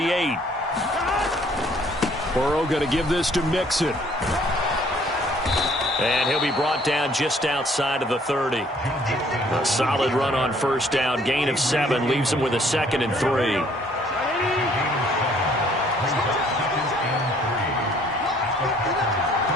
Burrow going to give this to Mixon. And he'll be brought down just outside of the 30. A solid run on first down. Gain of 7 leaves him with a 2nd and 3.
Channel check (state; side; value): normal; both; correlation 0.60